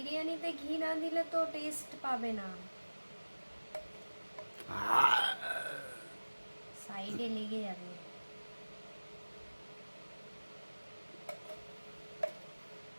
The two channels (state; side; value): inverted; both; correlation -1.00